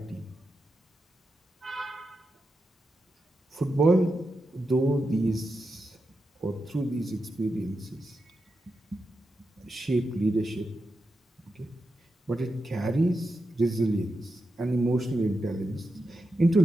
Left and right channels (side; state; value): both; normal; correlation 0.88